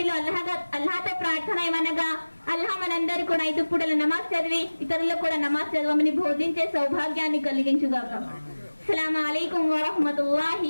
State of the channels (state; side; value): inverted; both; correlation -1.00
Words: అల్లాహతో ప్రార్థన ఏమనగా, అల్లాహ్ మనందరూ కూడా 5 పూటల నమాజ్ చదివి ఇతరులకు కూడా నమాజ్ చదవమని బోధించే సౌభాగ్యాన్ని కలిగించుగాక. అస్సలాము అలైకుం వరహ్మతుల్లాహి